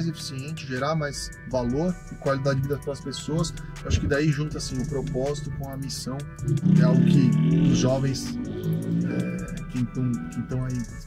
eficiente, gerar mais valor e qualidade de vida para as pessoas. Eu acho que daí junta assim, o propósito com a missão, é algo que os jovens que estão aí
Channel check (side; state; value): both; identical; correlation 1.00